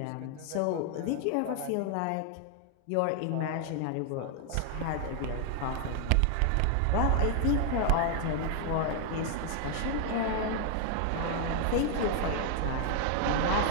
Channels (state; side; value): different; both; correlation 0.00